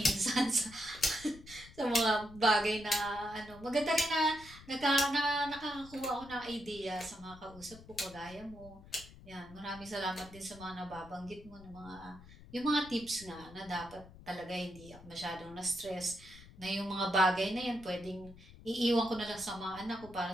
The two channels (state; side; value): noise; left; rumble, 19 dB below the sound